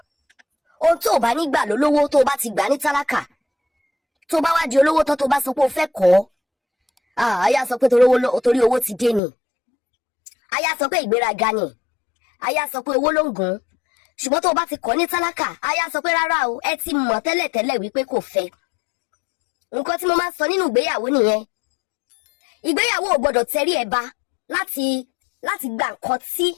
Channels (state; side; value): drops out; right; at 9.2 s